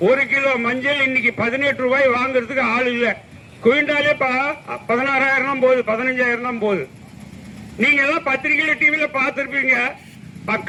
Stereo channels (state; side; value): identical; both; correlation 1.00